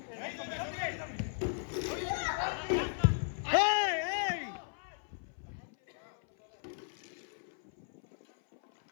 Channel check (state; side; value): silent; right; 54 dB below the other